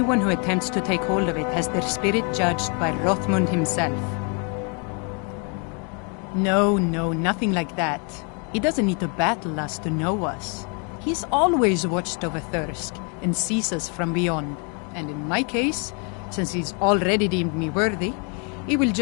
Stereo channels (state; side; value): quieter; right; 36.7 dB